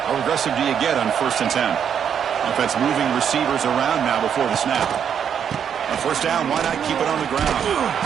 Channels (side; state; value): left; quieter; 8.1 dB